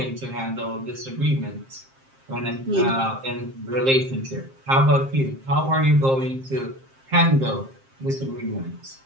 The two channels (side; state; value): left; late; 7.5 ms